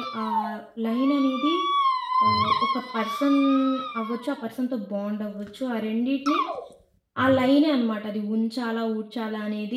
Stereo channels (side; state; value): both; identical; correlation 1.00